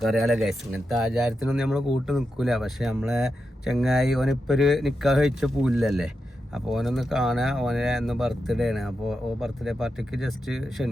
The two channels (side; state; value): both; normal; correlation 0.88